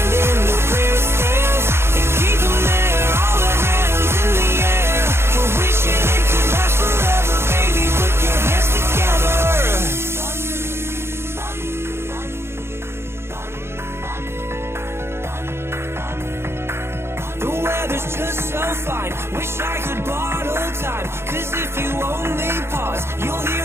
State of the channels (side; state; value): left; late; 0.12 ms